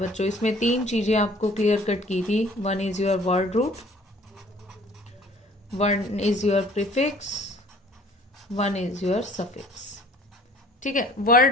इसमें 3 चीजें आपको क्लियर कट की थी। One is your word root, one is your prefix, one is your suffix. ठीक है,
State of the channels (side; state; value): both; normal; correlation 0.53